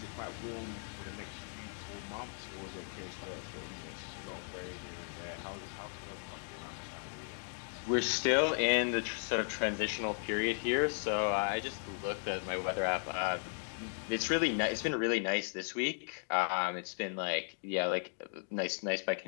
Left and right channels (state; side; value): silent; right; 53 dB below the other